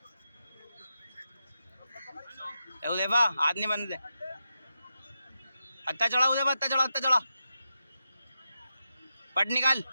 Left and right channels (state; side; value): inverted; both; correlation -0.87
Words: उदैफा हाथ नहीं बनते। हत्ता चढ़ा उदैफा, हत्ता चढ़ा, हत्ता चढ़ा। पट निकाल,